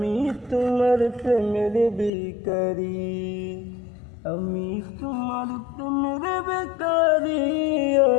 তোমার প্রেমের ভিখারি, আমি তোমার প্রেমের ভিখারি ইয়া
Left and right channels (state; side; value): drops out; right; at 2.1 s